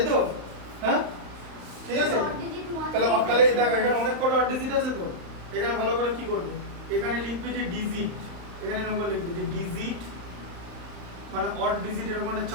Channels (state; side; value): late; left; 35 ms